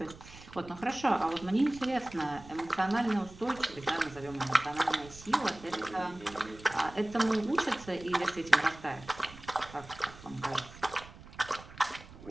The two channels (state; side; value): noise; right; rumble, 18 dB below the sound